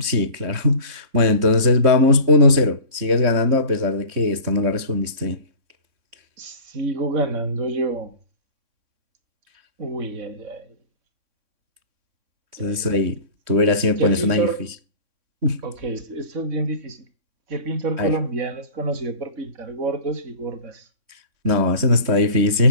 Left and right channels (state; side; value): late; left; 3.6 ms